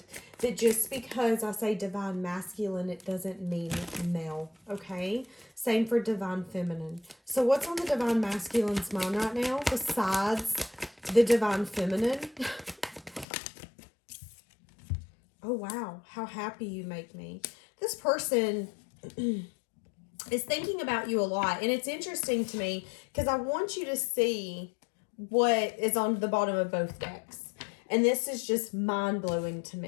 that just because I say Divine Masculine, it doesn't mean male, okay? Same for Divine Feminine. So what's on the Divine Masculine's mind right now besides the Divine Feminine? Oh, wow. How happy you make me. This person is thinking about you a lot. And it's interesting to me because I want you to see what is on the bottom of both decks. And this is just mind-blowing to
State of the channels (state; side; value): drops out; right; at 13.2 s